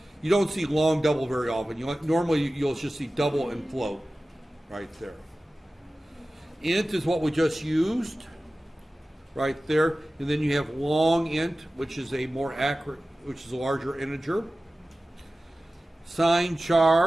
You don't see long double very often. Normally you'll just see double and float right there. Int is what we just used right there, and then you have long int, which is a more accurate, which is a larger integer. Sign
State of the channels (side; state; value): both; normal; correlation 0.96